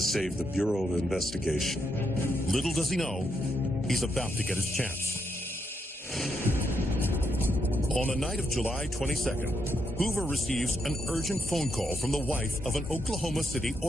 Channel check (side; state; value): both; normal; correlation 0.80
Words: the Bureau of Investigation. Little does he know, he's about to get his chance. On the night of July 22nd, Hoover receives an urgent phone call from the wife of an Oklahoma City